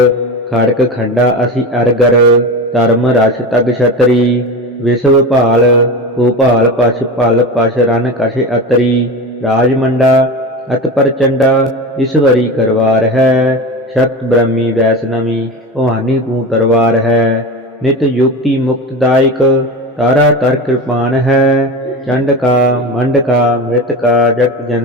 ਖੜਕ ਖੰਡਾ ਅਸੀਂ ਅਰਗਰ, ਧਰਮ ਰਸ ਤਗ ਛਤਰੀ। ਵਿਸ਼ਵ ਭਾਲ ਭੂਪਾਲ ਪਛ ਭਲ ਪਛ ਰਨ ਕਛ ਅਤਰੀ। ਰਾਜਮੰਡਾ ਅਤ ਪ੍ਰਚੰਡਾ, ਈਸ਼ਵਰੀ ਕਰਵਾਰ ਹੈ। ਸ਼ਕਤ ਬ੍ਰਹਮੀ ਵੈਸ਼ਨਵੀ, ਭਵਾਨੀ ਤੂੰ ਤਰਵਾਰ ਹੈ। ਨਿਤ ਯੁਕਤੀ ਮੁਕਤਦਾਇਕ, तारा तर कृपान है। चंड का मंड का मृत का जगत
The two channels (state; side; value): normal; both; correlation 0.26